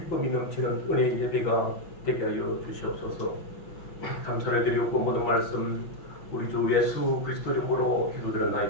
넘치는 은혜의 예배가 되게 하여 주시옵소서. 감사를 드리고 모든 말씀 우리 주 예수 그리스도 이름으로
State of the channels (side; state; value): right; late; 5.8 ms